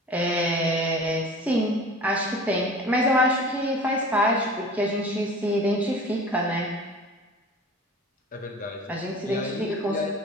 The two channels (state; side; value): normal; both; correlation 0.41